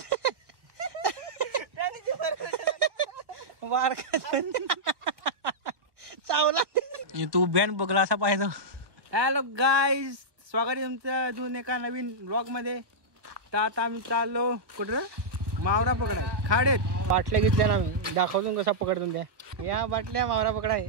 वारका चावला तू बॅन बघला असा पाहिजे. हॅलो गाईज, स्वागत आहे तुमचं अजून एका नवीन ब्लॉग मध्ये. तर आता आम्ही चाललो कुठं मावरा पकडाय. खाडेत बाटल्या घेतल्या ना, मी दाखवतो कसा पकडतो त्या. या बाटल्या मावरा पकडाय.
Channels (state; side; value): late; left; 1.4 ms